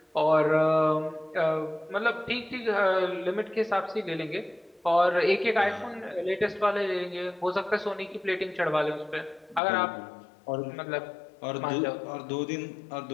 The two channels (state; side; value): drops out; right; at 9.6 s